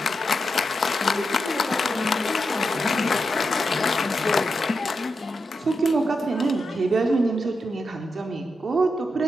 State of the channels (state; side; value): normal; both; correlation 0.86